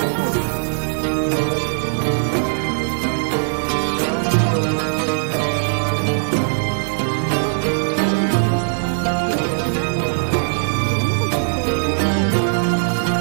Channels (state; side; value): silent; left; digital silence